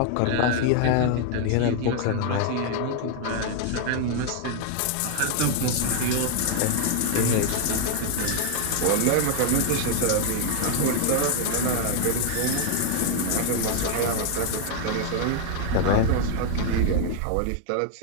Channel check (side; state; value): both; different; correlation 0.00